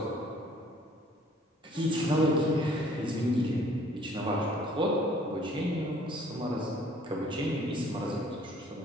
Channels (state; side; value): normal; both; correlation 0.57